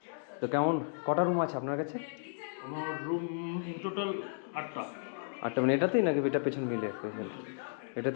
তো কেমন কটা রুম আছে আপনার কাছে? আমার রুম টোটাল 8টা। 8টা মানে এটাতেই নাকি এটা পেছন মিলে? পেছন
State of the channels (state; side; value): silent; right; digital silence